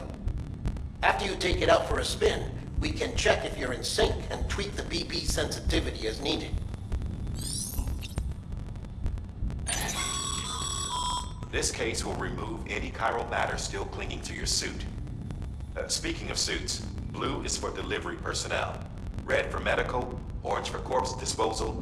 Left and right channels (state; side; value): identical; both; correlation 1.00